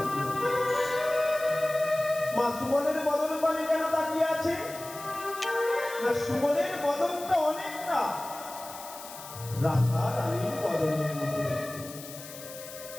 মা সুবলের বদন পানে কেন তাকিয়ে আছে? না, সুবলের বদনটা অনেকটা রাধা রানীর বদনের মতো,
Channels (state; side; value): noise; left; hiss, 14 dB below the sound